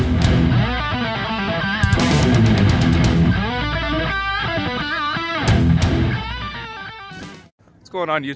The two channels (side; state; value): both; identical; correlation 1.00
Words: What's going on,